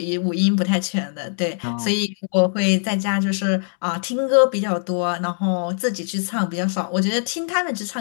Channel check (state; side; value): silent; right; digital silence